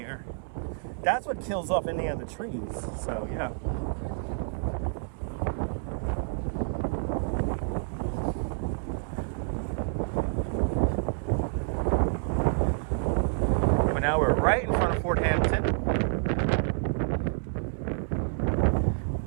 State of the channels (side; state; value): left; silent; 59 dB below the other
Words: that's what kills off any of the trees. So, yeah. But now we're right in front of Fort Hampton.